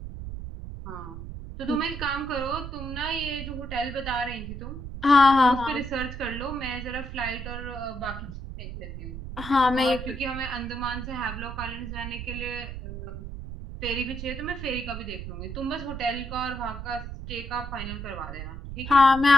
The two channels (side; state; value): right; noise; rumble, 8 dB below the sound